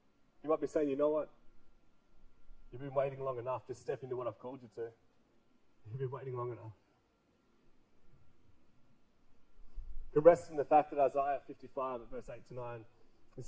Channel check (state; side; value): identical; both; correlation 1.00